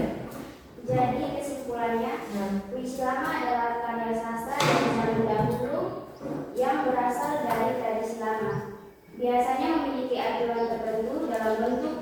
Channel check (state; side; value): identical; both; correlation 1.00